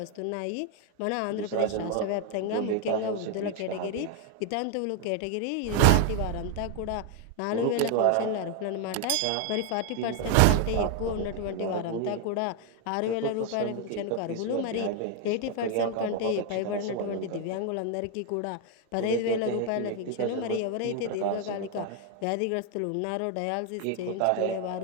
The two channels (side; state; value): both; different; correlation 0.01